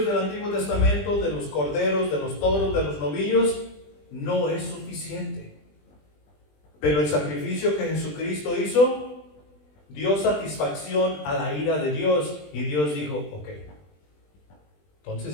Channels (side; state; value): right; late; 20 ms